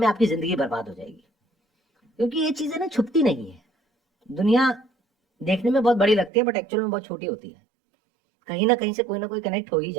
आपकी जिंदगी बर्बाद हो जाएगी। क्योंकि ये चीजें ना छुपती नहीं है, दुनिया देखने में बहुत बड़ी लगती है बट एक्चुअल में बहुत छोटी होती है। कहीं ना कहीं से कोई ना कोई कनेक्ट हो ही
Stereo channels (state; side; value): drops out; left; at 6.3 s